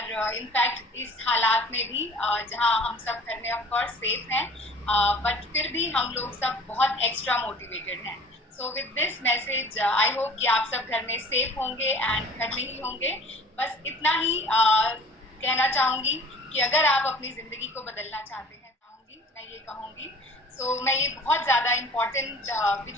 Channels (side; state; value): both; normal; correlation 0.47